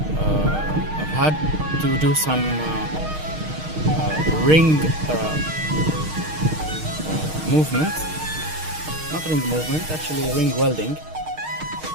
I've had to do some ring movement, not ring movement, actually ring welding.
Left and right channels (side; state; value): left; late; 6.4 ms